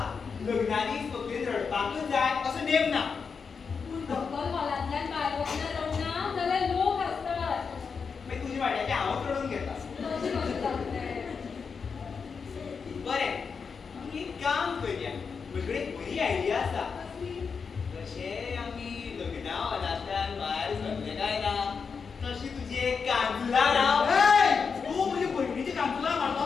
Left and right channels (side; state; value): right; quieter; 5.6 dB